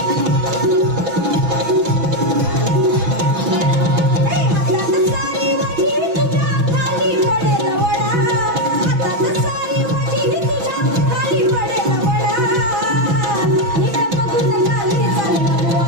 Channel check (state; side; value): late; left; 6.1 ms